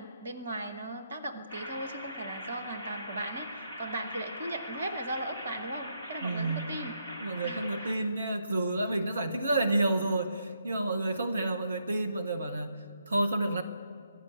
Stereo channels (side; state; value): both; inverted; correlation -0.78